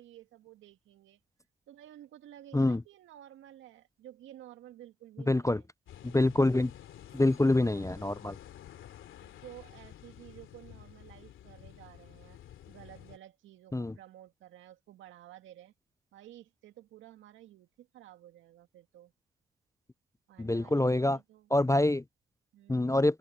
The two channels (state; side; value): normal; both; correlation 0.92